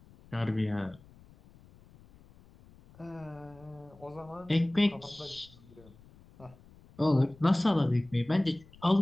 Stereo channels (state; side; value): noise; left; rumble, 24 dB below the sound